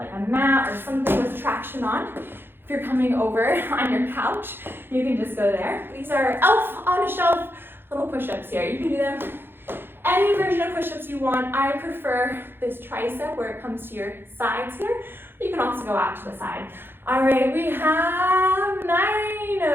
a mat or something with traction on. If you're coming over on your couch, you can just go there. These are elf on a shelf little push-ups here. You can do them any version of push-ups you want. I prefer this tricep where it comes to your sides here. You can also go out to the side. All right, we have 9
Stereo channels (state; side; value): late; left; 0.10 ms